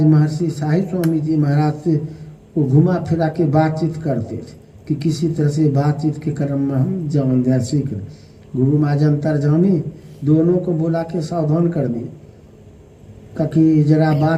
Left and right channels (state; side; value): identical; both; correlation 1.00